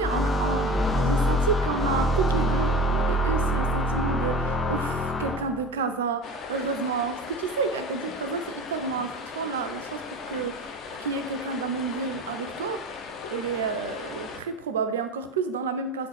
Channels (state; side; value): normal; both; correlation 0.32